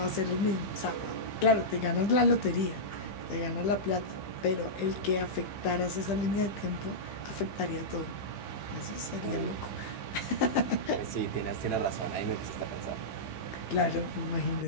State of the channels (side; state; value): right; late; 15 ms